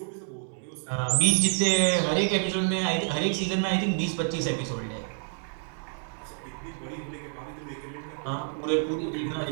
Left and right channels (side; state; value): left; silent; 59 dB below the other